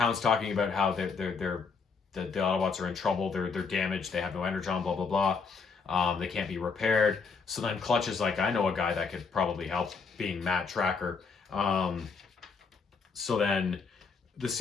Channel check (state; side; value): quieter; right; 5.1 dB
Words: talking about how the Autobots are in trouble. They're damaged. They have no Energon. Blah blah blah. They can't be repaired. So then Clutch is like, I know a guy that could probably help, being Matt Tracker. So then the